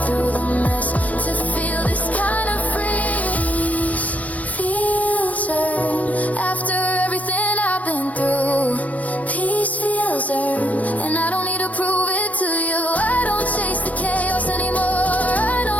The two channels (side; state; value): right; late; 0.072 ms